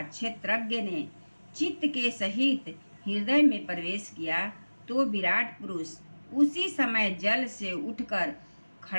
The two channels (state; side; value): inverted; both; correlation -1.00